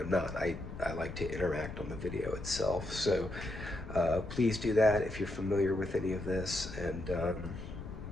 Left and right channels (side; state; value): left; noise; rumble, 10 dB below the sound